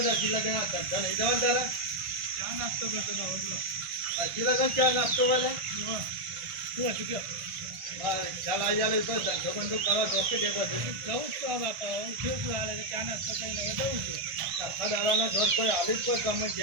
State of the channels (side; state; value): left; late; 1.5 ms